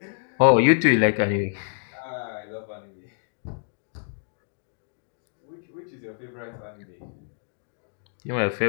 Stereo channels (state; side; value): silent; right; digital silence